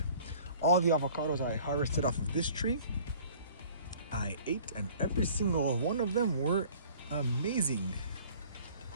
All the avocados I harvested off of this tree, I ate, and every single one of them were amazing.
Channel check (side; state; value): both; inverted; correlation -0.51